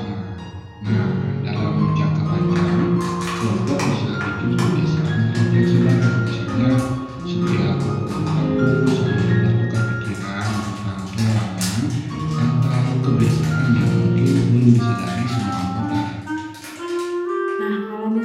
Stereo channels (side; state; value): both; identical; correlation 1.00